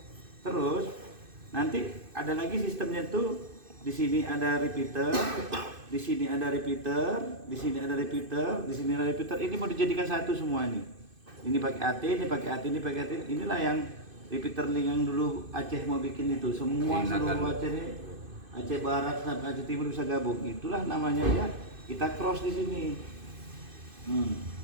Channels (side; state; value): left; late; 2.5 ms